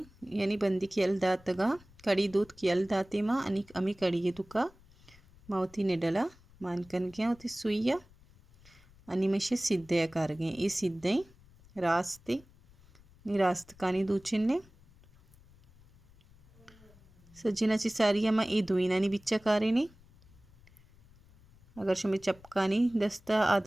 यानी बंदी की यल्दातगा कड़ी दूध की यल्दाती माँ अनिक अमी कड़ी ये तुका मावती निडला मानकन गया होती सुइया अनिमेशे सिद्धे कारगे ये सिद्धे रास्ते नी रास्त कानी दूचिन्ने सज्जिनाची सारियामा ये दुईनानी बिच्चा कारेनी अगर शुमे चपकानी दस्ता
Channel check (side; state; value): left; noise; rumble, 26 dB below the sound